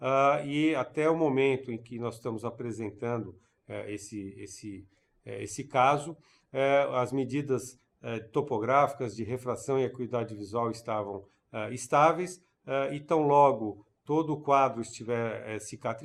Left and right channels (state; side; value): identical; both; correlation 1.00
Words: e até o momento em que nós estamos apresentando esse caso, as medidas topográficas de refração e acuidade visual estavam estáveis, e tão logo todo o quadro estiver